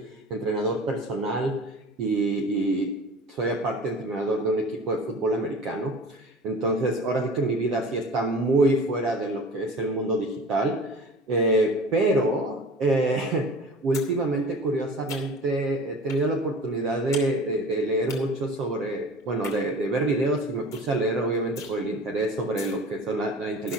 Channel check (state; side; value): normal; both; correlation 0.40